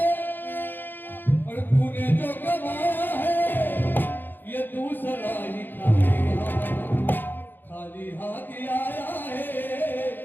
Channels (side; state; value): right; late; 0.092 ms